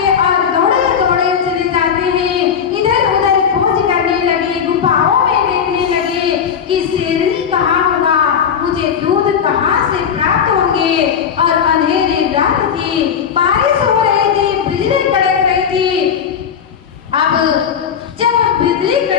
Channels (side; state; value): right; quieter; 7.6 dB